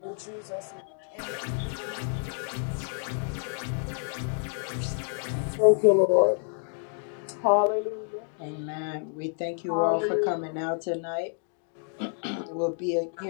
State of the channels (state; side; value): silent; right; 56 dB below the other